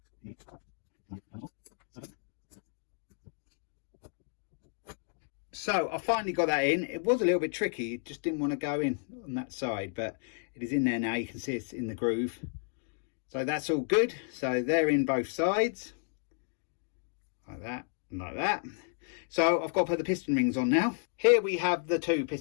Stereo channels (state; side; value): silent; right; 56 dB below the other